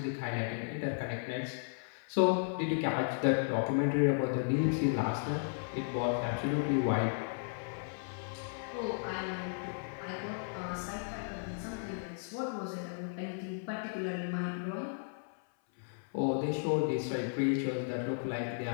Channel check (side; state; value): right; silent; 55 dB below the other